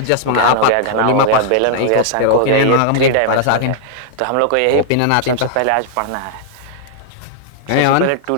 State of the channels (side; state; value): both; different; correlation -0.01